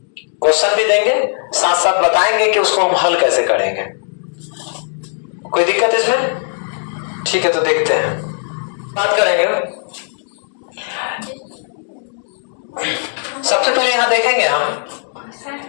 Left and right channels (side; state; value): right; silent; digital silence